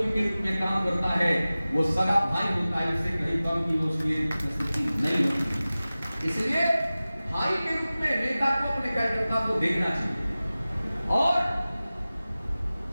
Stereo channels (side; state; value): both; inverted; correlation -0.97